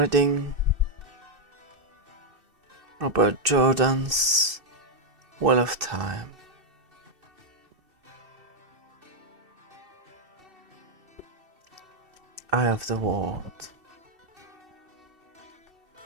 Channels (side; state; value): left; late; 2.7 ms